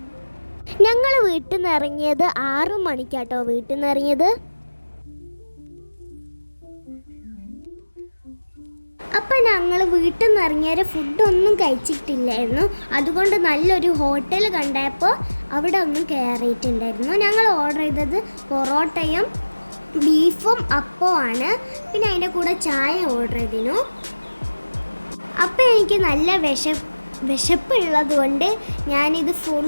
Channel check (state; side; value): inverted; both; correlation -1.00